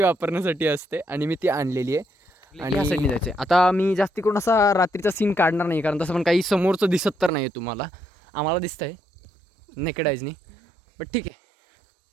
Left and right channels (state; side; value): drops out; left; at 7.3 s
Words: वापरण्यासाठी असते आणि मी ती आणलेली आहे. आणि या साईडने जायचं. आता मी जास्ती करून असा रात्रीचा सीन काढणार नाही कारण तसं पण काही समोरचं दिसत तर नाही आहे तुम्हाला. आम्हाला दिसतंय नेकेड आईजनी. बट ठीक आहे